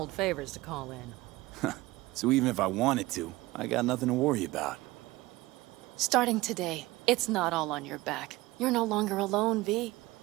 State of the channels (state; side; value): quieter; left; 19.6 dB